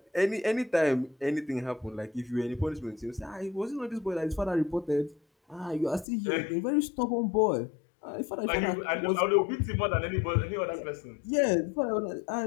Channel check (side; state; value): right; drops out; at 6.1 s